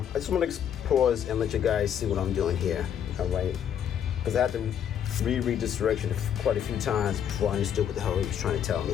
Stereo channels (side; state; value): right; quieter; 9.1 dB